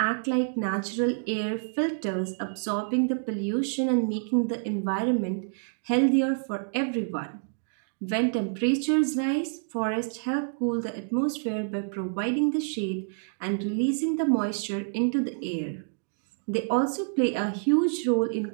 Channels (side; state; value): left; silent; digital silence